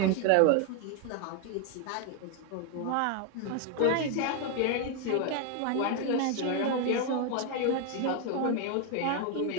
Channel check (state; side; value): different; both; correlation 0.01